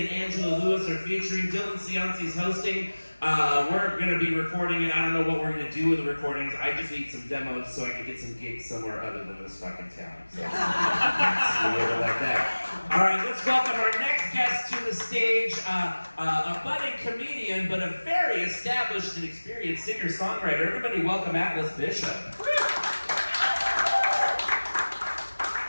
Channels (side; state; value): both; inverted; correlation -1.00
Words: Angela Lewis are featuring. Dylan Cianci's hosting. We're going to be recording it. I don't know what we're going to do with the recordings. I just need some demos so I can get some gigs somewhere other than this fucking town. So, like that. All right, let's welcome our next guest to the stage. A budding comedian, but a very established and experienced singer-songwriter. Everybody welcome Atlas Bishop.